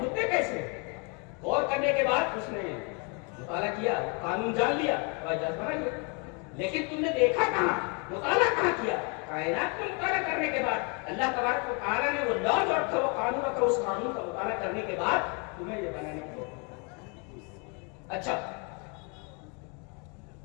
کیسے. غور کرنے کے بعد اس نے مطالعہ کیا، قانون جان لیا، جہاز بنا لیا. لیکن تم نے دیکھا کہاں، مطالعہ کہاں کیا؟ کائنات کو مطالعہ کرنے کے بعد اللہ تبارک و تعالیٰ نے وہ لاز رکھا، وہ قانون رکھا، اس قانون کا مطالعہ کرنے کے بعد تمہیں یہ بنانے کی. اچھا،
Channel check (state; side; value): quieter; right; 34.0 dB